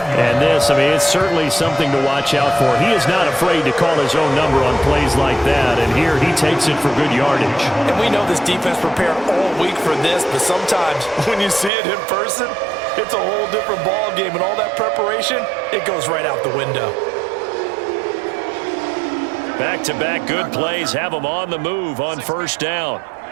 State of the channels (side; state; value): left; drops out; at 11.7 s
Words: And this, I mean, it's certainly something to watch out for. He is not afraid to call his own number on plays like that. And here he takes it for good yardage. And we know this defense prepared all week for this, but sometimes when you see it in person, it's a whole different ball game. And all that preparation, it goes right out the window. Back-to-back good plays have them on the move on first down.